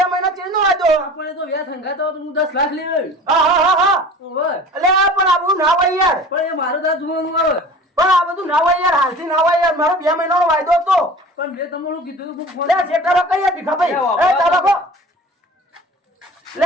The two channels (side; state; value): both; normal; correlation 0.41